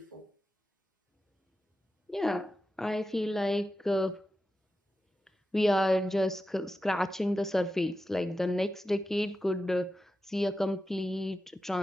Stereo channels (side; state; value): both; normal; correlation 0.91